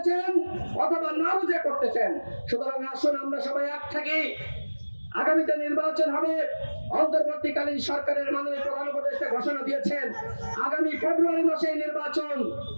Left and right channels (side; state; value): both; inverted; correlation -1.00